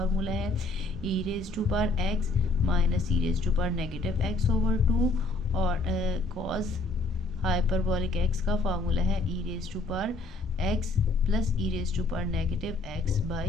है e raise to power x minus e raise to power negative x over 2 और कॉस हाइपरबॉलिक x का फार्मूला है e raise to power x plus e raise to power negative x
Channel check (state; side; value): quieter; right; 3.3 dB